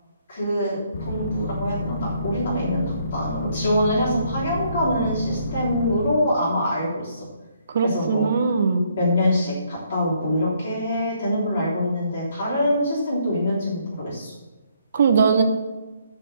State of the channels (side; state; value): both; inverted; correlation -0.69